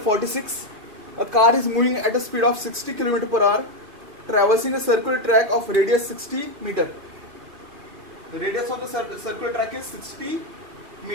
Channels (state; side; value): late; left; 2.4 ms